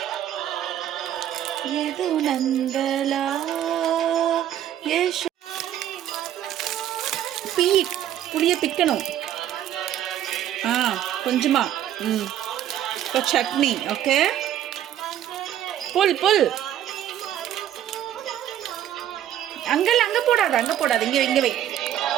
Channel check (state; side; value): quieter; left; 11.2 dB